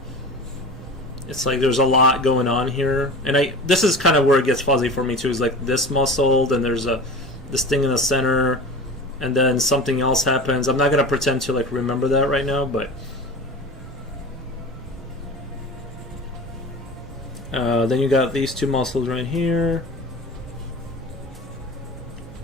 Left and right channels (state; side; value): normal; both; correlation 0.34